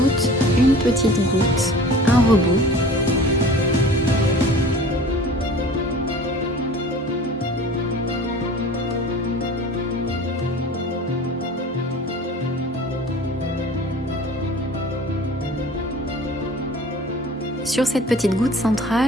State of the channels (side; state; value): both; normal; correlation 0.42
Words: une petite goutte, un rebond. Sur cette petite goutte